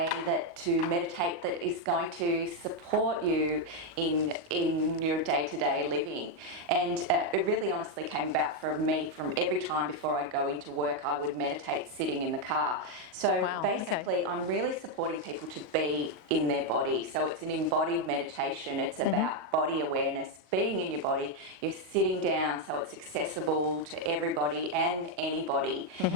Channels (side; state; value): left; late; 38 ms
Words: to meditate that is going to support you in your day-to-day living. And it really honestly came about for me from every time before I go into work, I would meditate sitting in the car. So basically, I'm really supporting people to be in their body. So it's an embodied meditation. It's about body awareness, being in your body. You're sitting down so it's accessible to everybody and anybody.